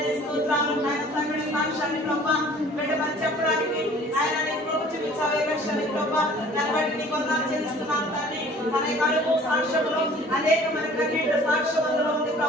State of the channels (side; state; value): both; normal; correlation 0.50